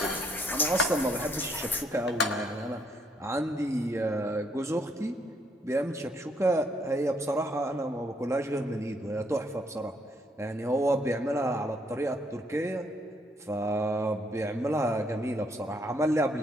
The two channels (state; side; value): normal; both; correlation 0.70